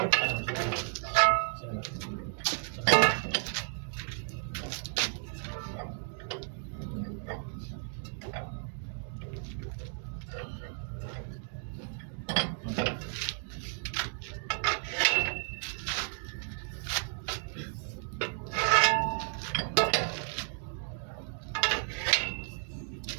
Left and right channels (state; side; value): silent; left; 56 dB below the other